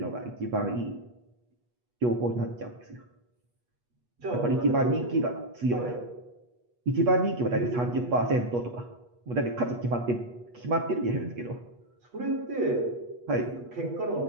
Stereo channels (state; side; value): late; left; 8.3 ms